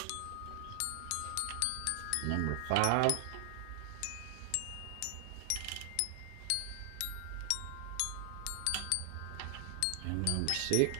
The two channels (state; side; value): different; both; correlation 0.00